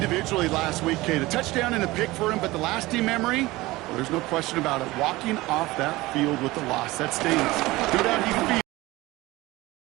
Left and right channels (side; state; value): left; quieter; 19.8 dB